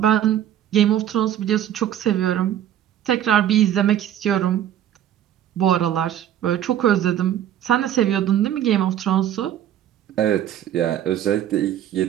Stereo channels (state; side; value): quieter; left; 11.0 dB